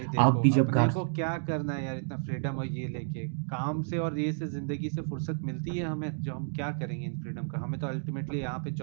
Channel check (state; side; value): silent; left; digital silence